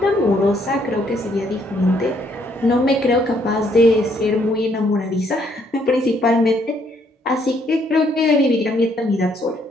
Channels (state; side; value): normal; both; correlation 0.69